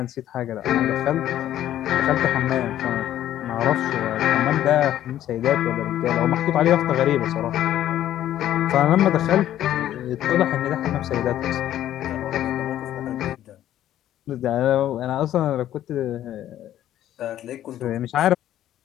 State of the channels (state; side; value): quieter; right; 12.2 dB